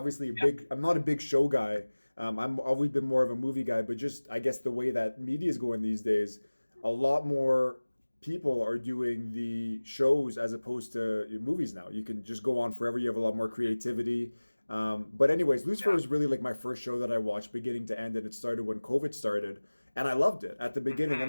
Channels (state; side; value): inverted; both; correlation -1.00